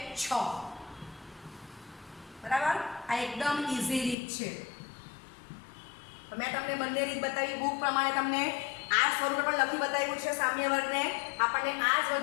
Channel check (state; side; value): drops out; right; at 4.2 s